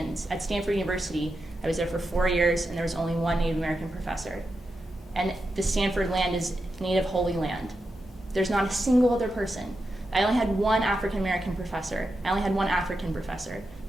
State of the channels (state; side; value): normal; both; correlation 0.88